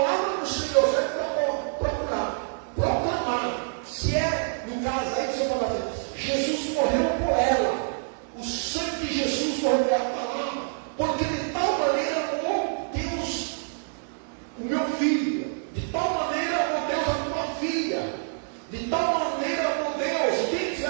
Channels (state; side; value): silent; left; digital silence